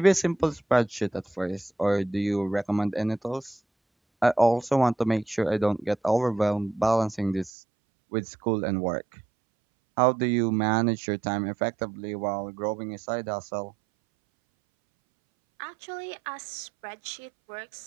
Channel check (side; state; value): left; drops out; at 7.5 s